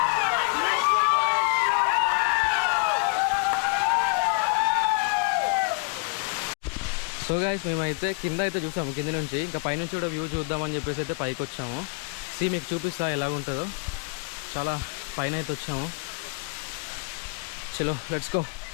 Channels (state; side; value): quieter; right; 32.4 dB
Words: సో గైస్, మేమైతే కింద అయితే చూసాము, కింద నుంచి. ఇంకా పైనుంచి కూడా వ్యూ చూద్దామని చెప్పేసి అయితే పైకి వచ్చాము. మీకు చూపిస్తా ఎలా ఉంటుందో. చాలా పైన అయితే వచ్చాము. చలో లెట్స్ గో.